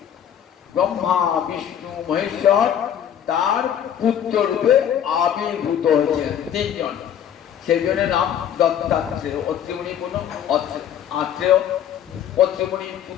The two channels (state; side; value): quieter; right; 9.6 dB